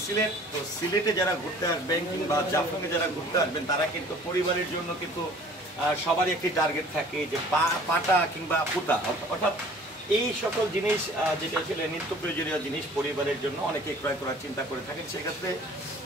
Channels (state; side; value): normal; both; correlation 0.50